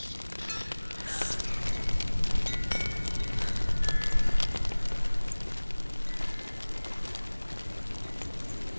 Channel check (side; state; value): both; inverted; correlation -1.00